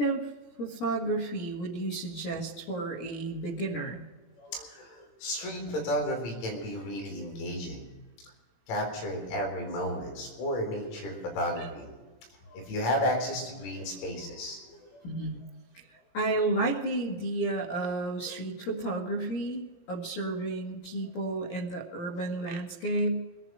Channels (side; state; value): right; late; 17 ms